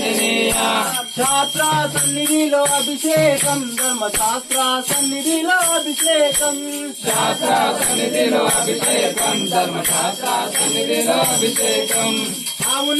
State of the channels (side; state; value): both; identical; correlation 1.00